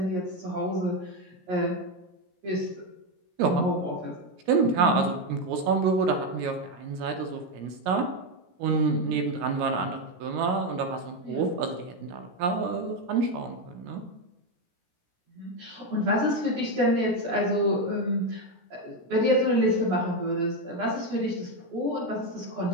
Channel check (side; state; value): left; late; 17 ms